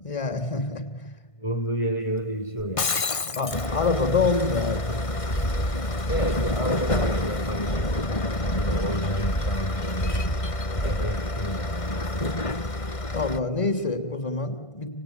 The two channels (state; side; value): late; right; 1.5 ms